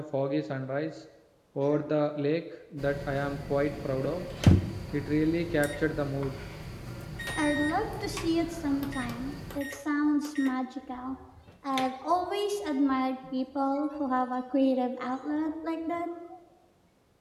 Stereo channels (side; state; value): both; identical; correlation 1.00